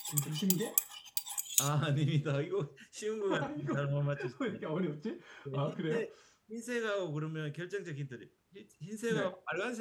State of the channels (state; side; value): identical; both; correlation 1.00